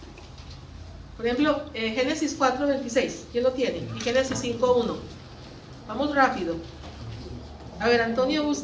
Por ejemplo, Génesis 4:26, ¿quién lo tiene? Y Génesis 5:1. Vamos rápido. A ver, Antonio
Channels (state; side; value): identical; both; correlation 1.00